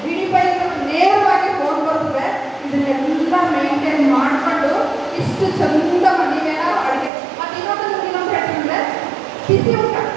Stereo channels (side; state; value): left; drops out; at 7.1 s